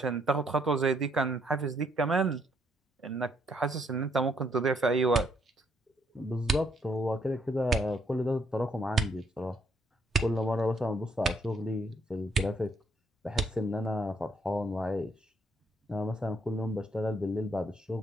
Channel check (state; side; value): normal; both; correlation 0.71